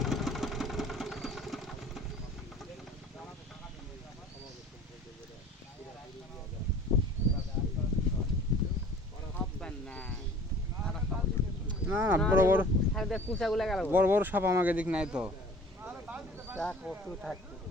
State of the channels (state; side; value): normal; both; correlation 0.48